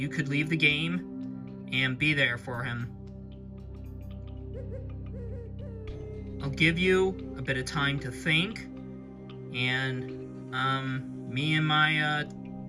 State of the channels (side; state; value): both; identical; correlation 1.00